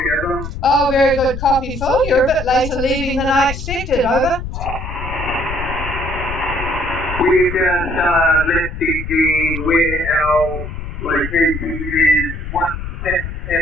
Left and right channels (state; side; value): noise; left; rumble, 7 dB below the sound